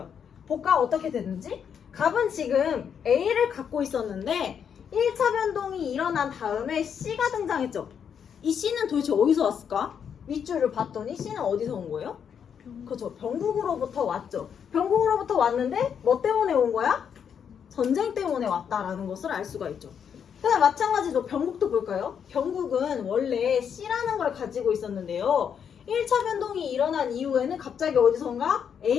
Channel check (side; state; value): right; quieter; 7.7 dB